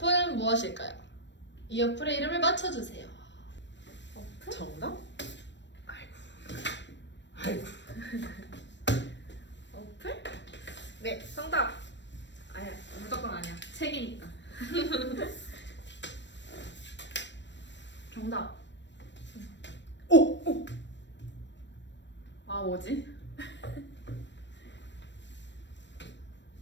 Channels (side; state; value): right; late; 0.53 ms